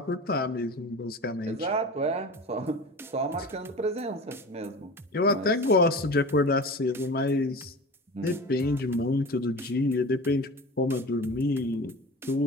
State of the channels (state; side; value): normal; both; correlation 0.35